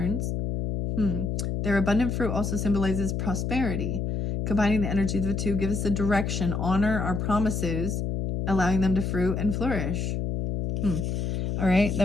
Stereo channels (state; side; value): noise; left; hum, 1 dB below the sound